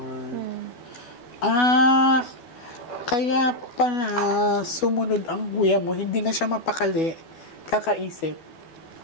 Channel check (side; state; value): right; late; 12 ms